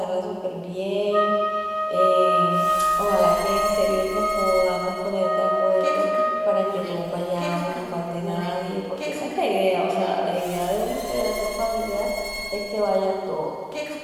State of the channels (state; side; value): identical; both; correlation 1.00